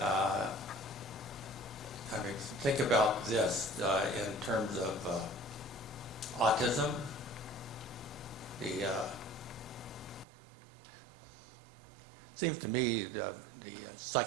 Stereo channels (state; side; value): drops out; left; at 10.2 s